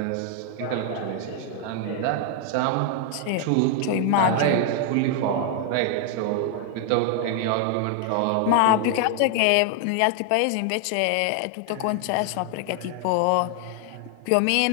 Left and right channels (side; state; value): both; different; correlation 0.00